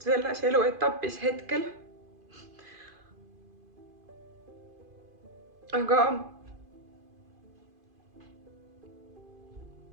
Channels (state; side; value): late; left; 2.5 ms